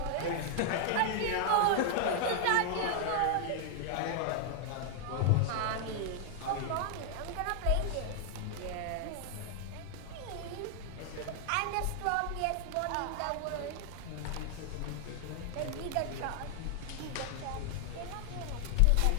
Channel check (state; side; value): different; both; correlation 0.00